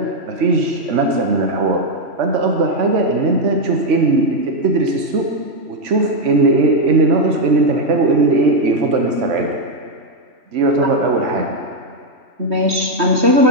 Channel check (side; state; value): left; late; 3.1 ms